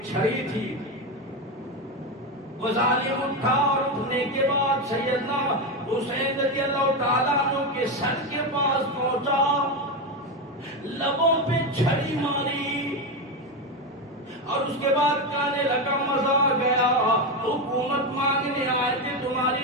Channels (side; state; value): both; normal; correlation 0.13